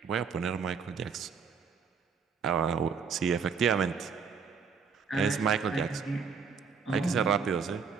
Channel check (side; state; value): left; quieter; 6.0 dB